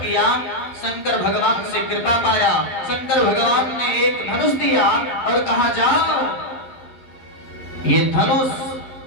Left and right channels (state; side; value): late; right; 11 ms